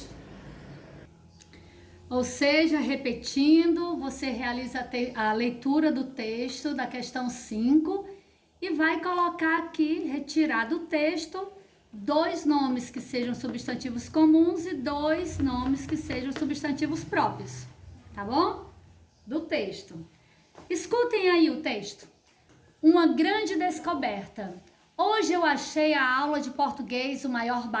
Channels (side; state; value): both; identical; correlation 1.00